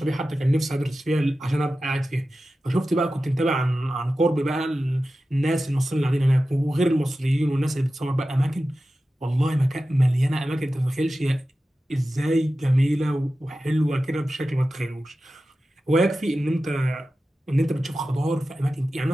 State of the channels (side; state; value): both; normal; correlation 0.94